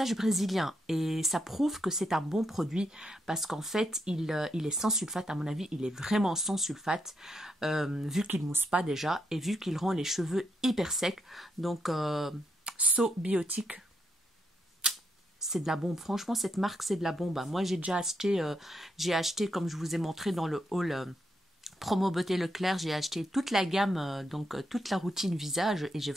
brésilien et ça prouve que c'est un bon produit parce qu'en fait il est sans sulfate. À mon avis il est vraiment sans sulfate vu qu'il mousse pas déjà et vu qu'il rend les cheveux hyper secs. Donc So Biotique, c'est de la bombe. Franchement cette marque c'est de la bombe. Moi j'ai déjà acheté, comme je vous ai montré dans le haul Promo Beauté Leclerc, j'ai acheté toute la gamme, donc toute la routine visage et j'ai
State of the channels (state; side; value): normal; both; correlation 0.79